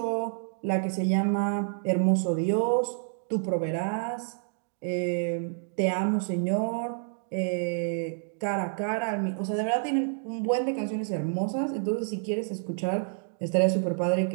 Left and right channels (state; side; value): silent; left; digital silence